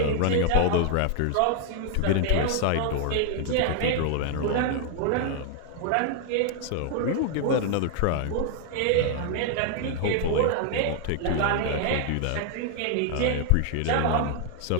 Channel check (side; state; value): both; different; correlation 0.00